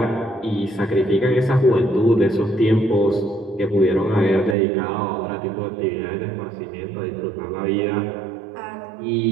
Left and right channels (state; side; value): drops out; left; at 4.5 s